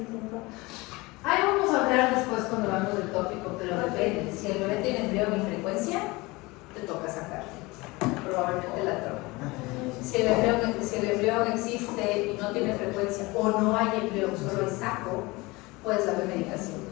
tiempo? Ahí vamos a hablar después cuando hablamos del tópico, pero depende. Si el bebé tiene embrión en frecuencia, te toca sacar probablemente la trompa. Si el embrión existe y no tiene frecuencia o no hay embrión, solo hay saco, puedes darle medicación.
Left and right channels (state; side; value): quieter; right; 23.0 dB